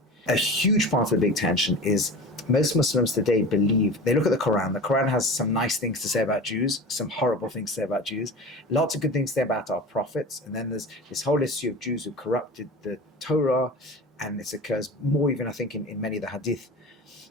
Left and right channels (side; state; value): both; normal; correlation 0.33